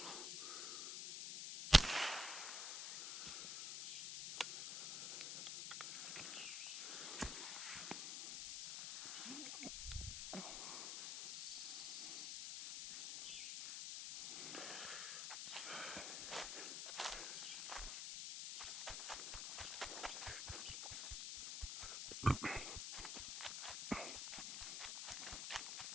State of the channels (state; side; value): noise; left; hiss, 3 dB below the sound